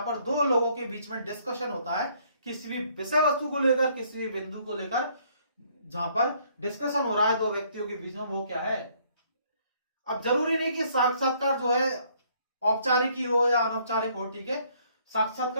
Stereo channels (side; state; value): both; inverted; correlation -0.64